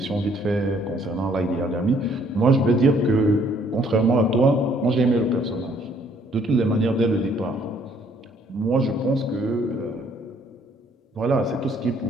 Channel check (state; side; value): normal; both; correlation 0.63